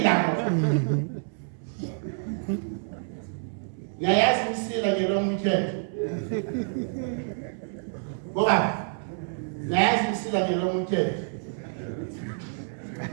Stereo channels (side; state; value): left; silent; 60 dB below the other